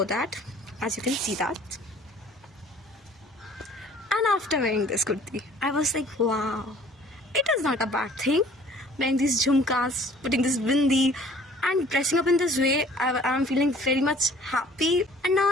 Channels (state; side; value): normal; both; correlation 0.52